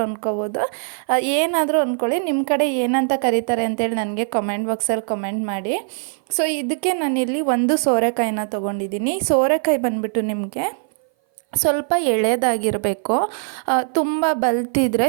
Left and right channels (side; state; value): left; silent; 59 dB below the other